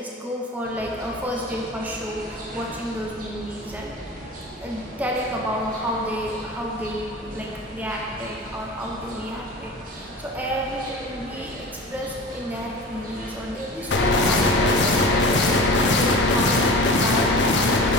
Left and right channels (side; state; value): both; normal; correlation 0.35